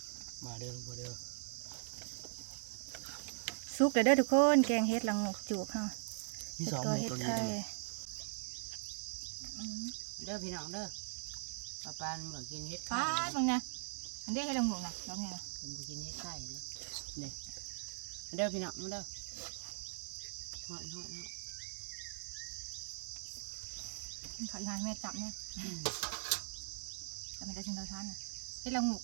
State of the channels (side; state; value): left; silent; digital silence